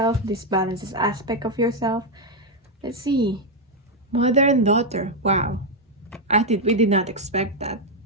This balances aspect of yourself. Let's see. Mother and daughter. Wow. We did not expect that.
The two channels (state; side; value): normal; both; correlation 0.02